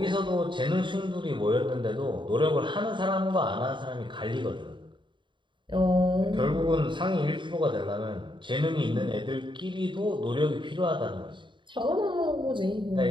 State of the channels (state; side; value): late; left; 0.23 ms